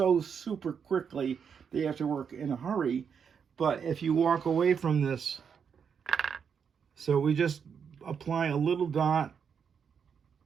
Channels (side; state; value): left; quieter; 6.9 dB